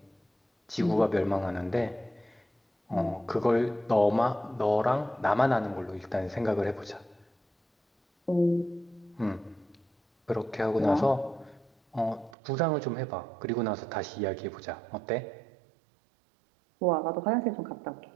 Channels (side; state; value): left; drops out; at 12.4 s